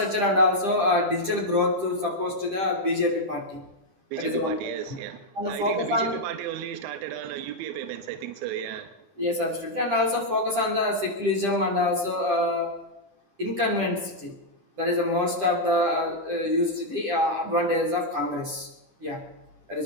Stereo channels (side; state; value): left; late; 10 ms